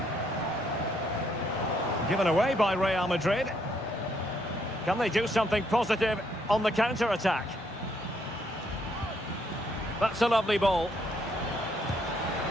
Given away by Real Madrid. Can they do something positive on the counter-attack? That's a lovely ball.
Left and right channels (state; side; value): normal; both; correlation 0.72